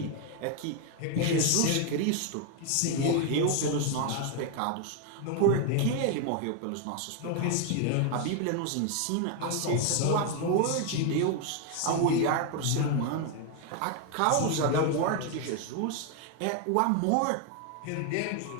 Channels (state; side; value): different; both; correlation 0.01